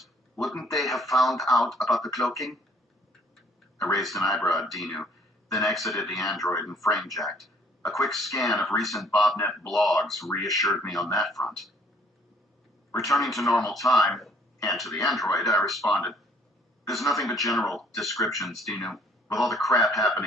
wouldn't they have found out about the cloaking? I raised an eyebrow at Dinu, then exited the android and frame-jacked. A quick scan of recent BobNet blogs reassured me on that front. Returning to normal time, and to the android, I responded, "There's nothing but general descriptions, Dinu. With all the crap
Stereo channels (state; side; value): normal; both; correlation 0.61